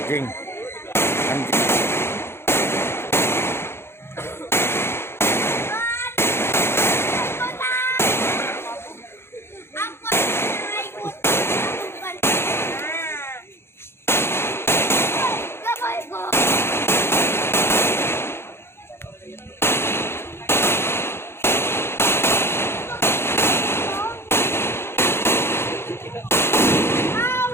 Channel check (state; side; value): late; right; 0.12 ms